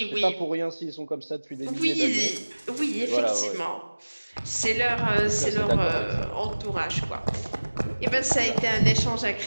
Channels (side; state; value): both; inverted; correlation -1.00